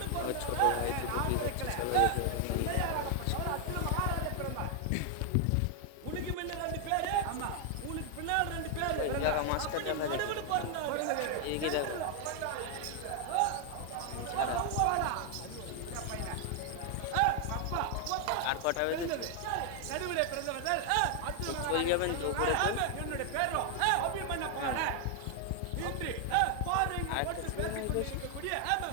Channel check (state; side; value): different; both; correlation 0.00